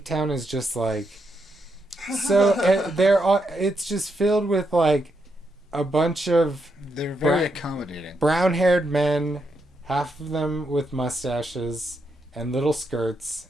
just like... So, it's just filled with like a bunch of... They're very accommodating. Brown-haired men, half of them with mustaches and little skirts.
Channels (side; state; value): both; normal; correlation 0.81